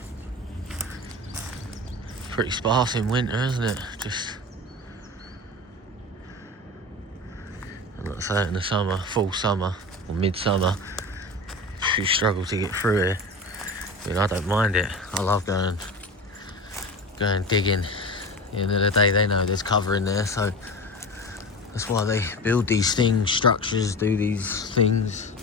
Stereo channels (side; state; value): both; normal; correlation 0.30